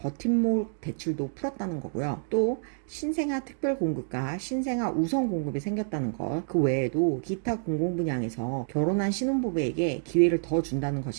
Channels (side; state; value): left; silent; digital silence